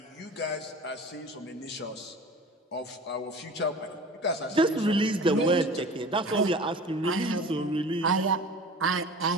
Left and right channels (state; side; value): normal; both; correlation 0.39